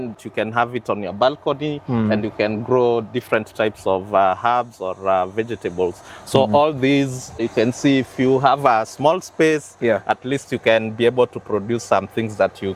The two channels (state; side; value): identical; both; correlation 1.00